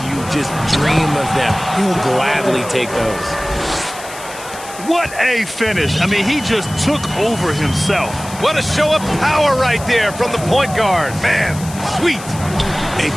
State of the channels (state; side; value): noise; left; hiss, 15 dB below the sound